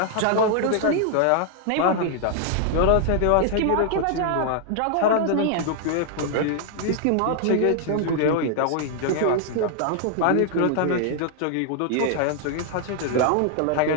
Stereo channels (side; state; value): both; different; correlation 0.00